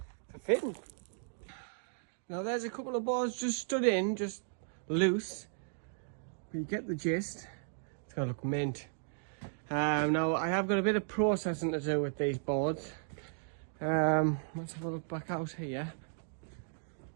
for fitting. Now there's a couple of boards just stood in, just loose. But you get the gist. It's gonna look mint. Now I have got a bit of processing to do with these boards. Let's have a look back out here.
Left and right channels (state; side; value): silent; left; digital silence